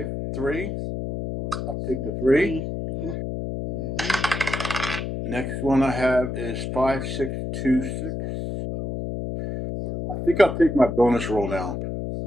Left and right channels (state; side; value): noise; left; hum, 4 dB below the sound